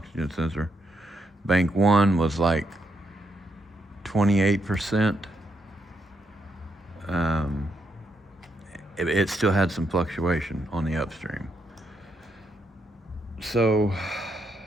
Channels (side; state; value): both; normal; correlation 0.78